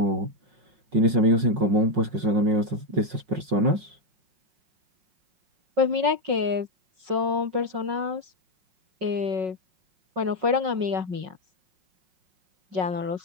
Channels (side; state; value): left; late; 5.5 ms